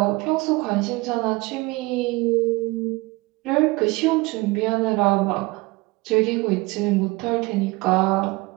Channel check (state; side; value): quieter; left; 23.3 dB